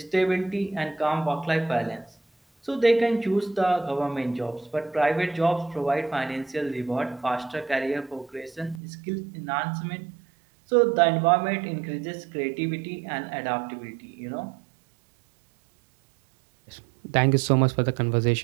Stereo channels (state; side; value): drops out; left; at 8.8 s